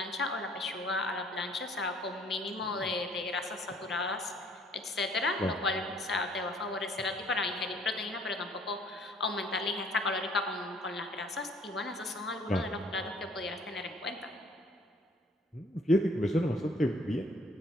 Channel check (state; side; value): normal; both; correlation 0.59